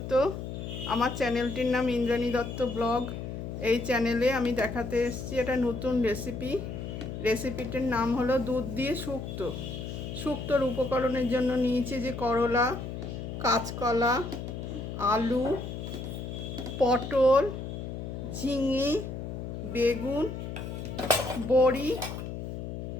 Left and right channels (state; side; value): noise; left; hum, 7 dB below the sound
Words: আমার চ্যানেলটির নাম ইন্দ্রাণী দত্ত ব্লগ। এই চ্যানেলে আমি দেখাতে এসেছি একটা নতুন রেসিপিটির নাম হলো দুধ দিয়ে শুক্তো। শুক্তোর উপকরণের জন্য নিয়েছি যে করলা, কাঁচকলা, আলু, পটল, ঝিঙে, বেগুন, বড়ি